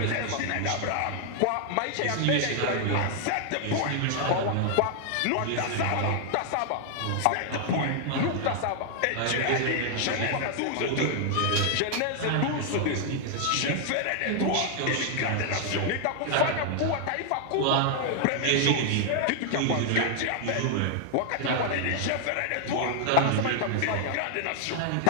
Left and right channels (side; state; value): both; different; correlation 0.00